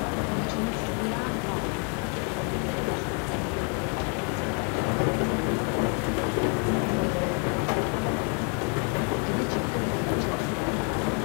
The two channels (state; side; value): quieter; right; 38.6 dB